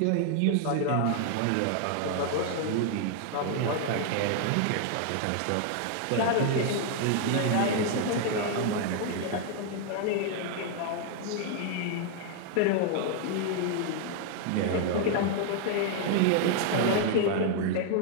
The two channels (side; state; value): both; different; correlation 0.00